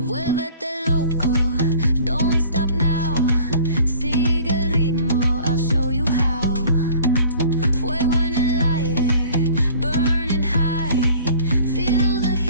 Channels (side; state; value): both; inverted; correlation -0.48